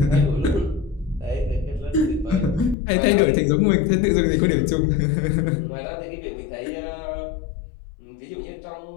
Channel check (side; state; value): right; drops out; at 2.8 s